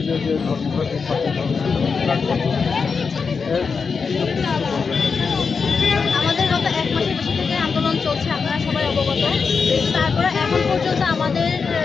যে ধর্মঘট আমাদের গত 1 মাসের বেশি থেকে আন্দোলন চলছে, আপনারা সবাই অবগত। তারপরে এখন পর্যন্ত আমাদের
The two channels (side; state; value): right; quieter; 5.3 dB